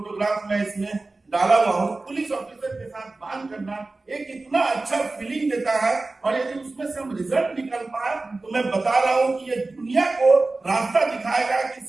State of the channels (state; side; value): quieter; left; 3.3 dB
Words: में इसमें डाला हुआ हूँ, पुलिस ऑफिसर के साथ बात करना एक इतना अच्छा फीलिंग देता है। और यदि उसमें से हम रिजल्ट निकल पाए तो मैं बता रहा हूँ कि ये दुनिया को रास्ता दिखाएगा कि